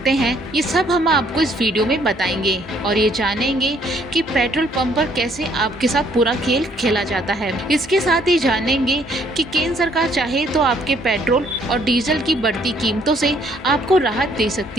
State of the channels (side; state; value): both; normal; correlation 0.65